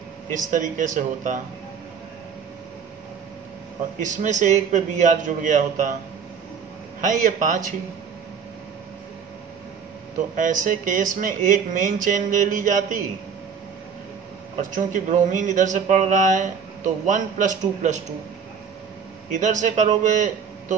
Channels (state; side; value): quieter; left; 6.6 dB